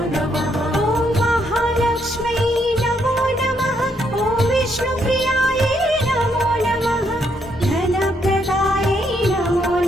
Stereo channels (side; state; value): both; normal; correlation 0.74